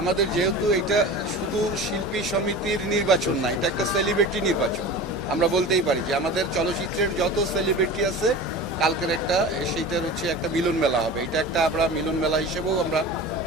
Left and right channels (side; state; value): both; normal; correlation 0.34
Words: আমাদের যেহেতু এটা শুধু শিল্পী সমিতির নির্বাচন না, এটা একটা সেলিব্রিটি নির্বাচন। আমরা বলতেই পারি যে আমাদের চলচ্চিত্রের যত সেলিব্রিটি আছে কালকের সেইটার একটা মিলন মেলা হবে। এটা একটা আমরা মিলন মেলা হিসেবেও আমরা